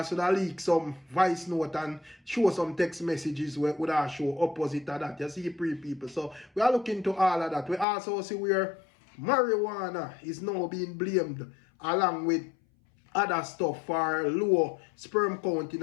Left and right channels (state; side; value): drops out; right; at 7.9 s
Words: would have leak some voice note and show some text messages where would have show opposite of that. You see people. So we are looking to all of that. We also see where marijuana is now being blamed along with other stuff for low sperm count in